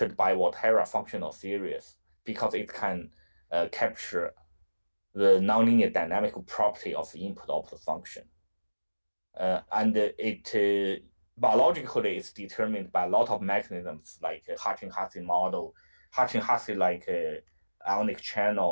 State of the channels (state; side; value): inverted; both; correlation -1.00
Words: by Volterra functional series because it can capture the nonlinear dynamical property of the input-output function. And it biologically is determined by a lot of mechanisms like Hsieh model, Hsieh like ionic